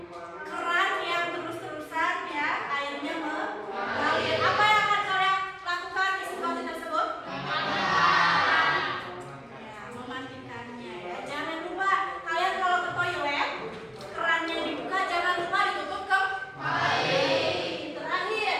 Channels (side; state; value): both; identical; correlation 1.00